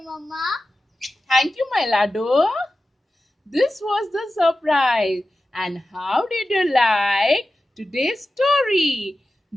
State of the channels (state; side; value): normal; both; correlation 0.94